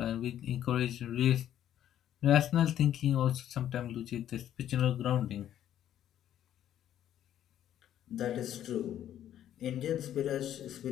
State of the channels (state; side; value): quieter; right; 11.1 dB